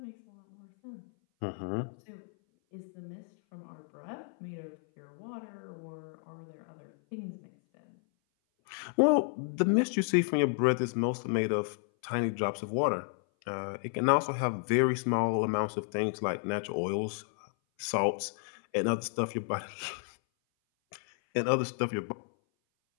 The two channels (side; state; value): right; silent; 56 dB below the other